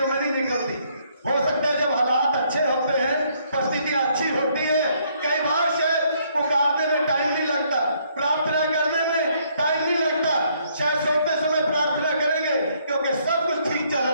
में नहीं निकलती। हो सकता है जब हालात अच्छे होते हैं, परिस्थितियां अच्छी होती है, कई बार शायद पुकारने में टाइम नहीं लगता, प्रार्थना करने में टाइम नहीं लगता, शायद सोते समय प्रार्थना करेंगे क्योंकि सब कुछ ठीक चल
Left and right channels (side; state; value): both; inverted; correlation -0.68